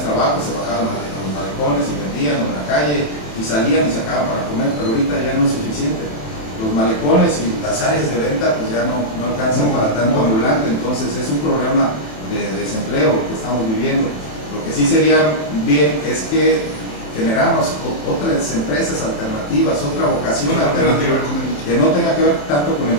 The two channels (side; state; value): right; late; 28 ms